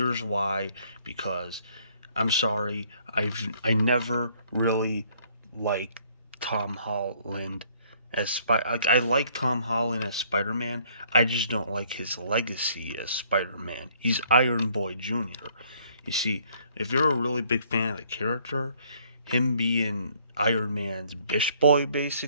why: because I'm sorry, I never really liked Tom Holland as I like Tom Holland as Spider-Man. I just don't like his legacy as Spider-Man. He's Iron Boy Jr. You see, if you're a really big fan of the character, him being Iron Man's bish boy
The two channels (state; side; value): inverted; both; correlation -0.63